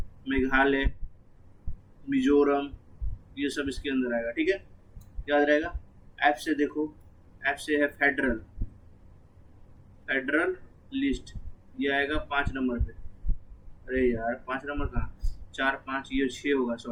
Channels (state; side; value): identical; both; correlation 1.00